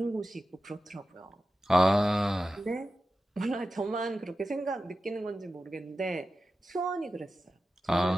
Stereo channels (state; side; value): normal; both; correlation 0.93